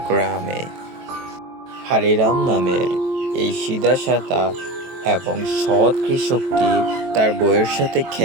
গ্রামে হারিরাম নামের এই সিধাসাদা এবং সৎ কৃষকটি তার বউয়ের সাথে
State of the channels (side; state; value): left; late; 23 ms